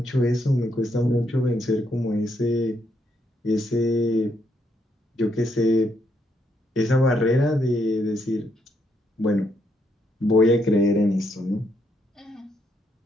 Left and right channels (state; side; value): normal; both; correlation 0.76